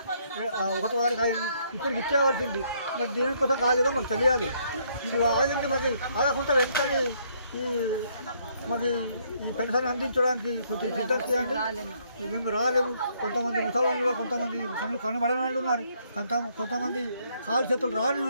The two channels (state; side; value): inverted; both; correlation -0.69